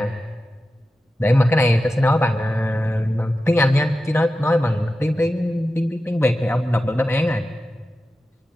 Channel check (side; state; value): both; normal; correlation 0.92